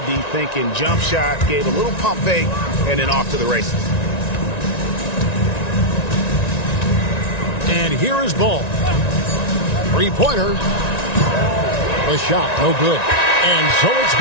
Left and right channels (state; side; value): late; right; 1.9 ms